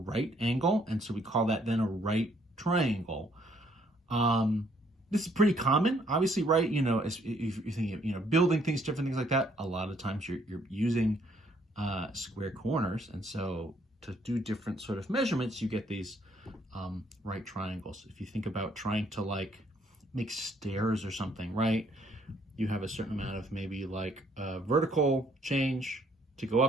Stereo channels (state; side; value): normal; both; correlation 0.66